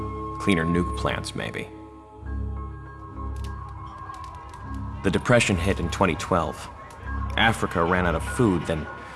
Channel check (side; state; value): both; identical; correlation 1.00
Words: cleaner nuke plants, maybe. The Depression hit in 2012. Africa ran out of food, then